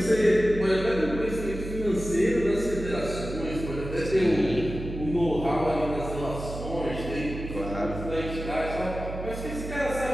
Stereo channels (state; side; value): noise; right; hum, 8 dB below the sound